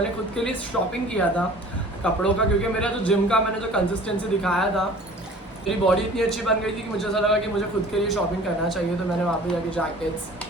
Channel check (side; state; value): both; normal; correlation 0.46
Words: खुद के लिए शॉपिंग किया था कपड़ों का, क्योंकि मेरा जो जिम का मैंने जो कंसिस्टेंसी दिखाया था, मेरी बॉडी इतनी अच्छी बन गई थी कि मुझे ऐसा लगा कि मुझे खुद के लिए शॉपिंग करना चाहिए। तो मैंने वहाँ पे जाके जैकेट्स,